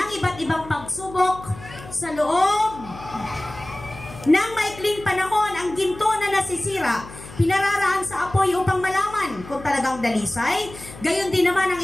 iba't ibang pagsubok sa loob ng maikling panahon. Ang ginto na nasisira, pinararaan sa apoy upang malaman kung talagang dalisay. Gayon din naman ang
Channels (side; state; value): left; noise; hum, 16 dB below the sound